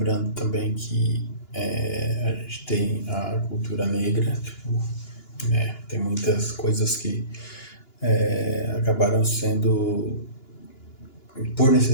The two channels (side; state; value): right; late; 2.9 ms